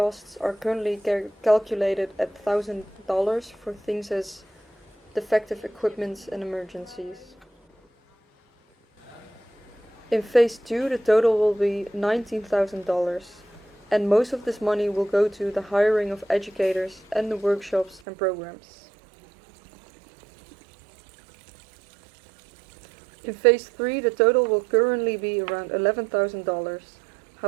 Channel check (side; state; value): left; drops out; at 18.0 s